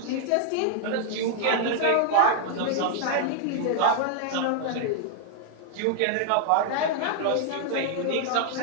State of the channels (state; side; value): different; both; correlation 0.00